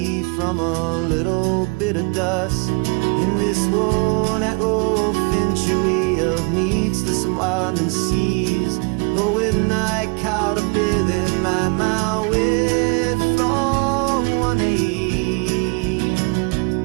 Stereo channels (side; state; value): left; quieter; 31.9 dB